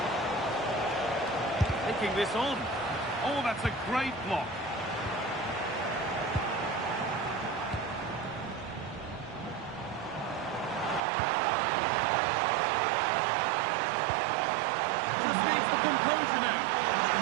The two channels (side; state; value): left; drops out; at 11.0 s